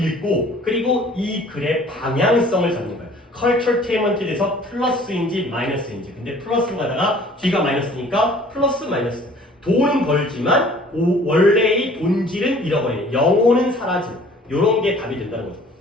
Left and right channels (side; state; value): both; normal; correlation 0.52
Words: 그리고 이 글의 방향성을 잡는 거예요. culturetainment에 대해서 플러스인지 마이너스인지. 근데 플러스로 가다가 뒤가 마이너스니까 플러스 마이너스. 돈은 벌지만 원래의 본질은 잃어버리는, 영혼은 사라진, 이런 게 답이 된다는 거죠.